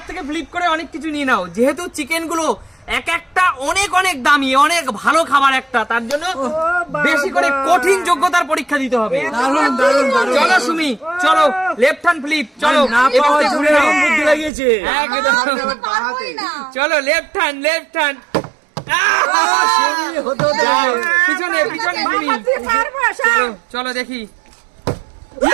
থেকে ফ্লিপ করে অনেক কিছু নিয়ে নাও, যেহেতু চিকেন গুলো এক একটা অনেক অনেক দামি, অনেক ভালো খাবার একটা, তার জন্য বেশি করে কঠিন যোগ্যতার পরীক্ষা দিতে হবে। চলো সুমি, চলো লেফট হ্যান্ড ফ্লিপ, চলো বুদ্ধি লাগিয়েছে। চলো লেফট হ্যান্ড, লেফট হ্যান্ড, পিছনে পিছনে সুমি, চলো চলো দেখি।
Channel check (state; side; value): drops out; left; at 14.5 s